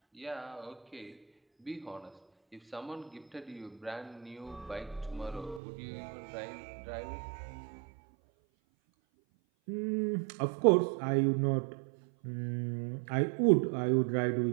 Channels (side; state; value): left; drops out; at 5.6 s